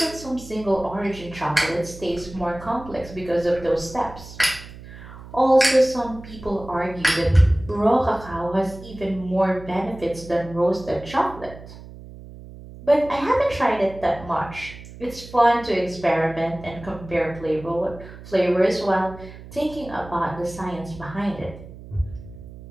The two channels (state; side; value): noise; right; hum, 16 dB below the sound